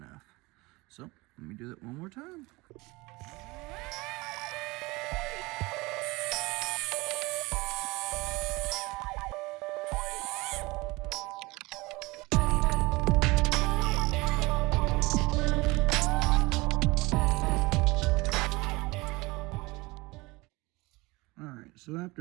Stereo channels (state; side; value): quieter; left; 23.0 dB